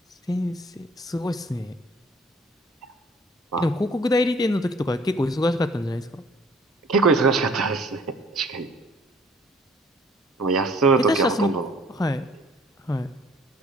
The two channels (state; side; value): normal; both; correlation 0.56